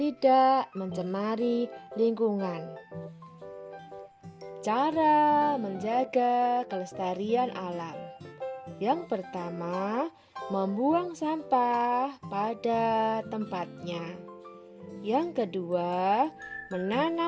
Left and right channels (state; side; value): identical; both; correlation 1.00